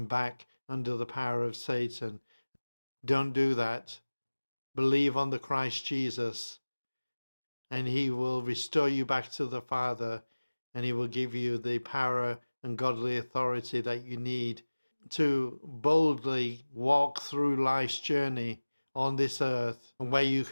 back under the power of Satan. Don't do that. Believe on the Christ Jesus, and he will restore you back to the Father, and he will give you the power and godly authority that you need to boldly walk through life's journey on this earth, and where you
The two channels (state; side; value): inverted; both; correlation -1.00